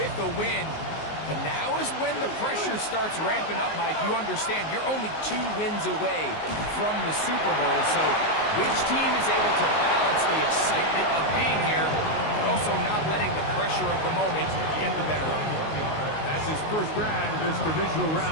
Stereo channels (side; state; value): right; late; 19 ms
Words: a win. But now is when the pressure starts ramping up, Mike. You understand you're only 2 wins away from the Super Bowl. So which team is able to balance the excitement of being here, but also not letting the pressure of the moment get the better of you? That's his first grab of this divisional